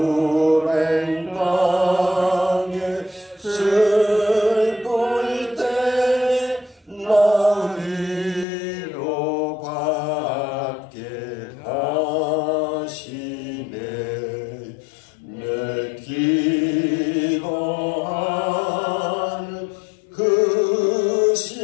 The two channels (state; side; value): drops out; right; at 8.5 s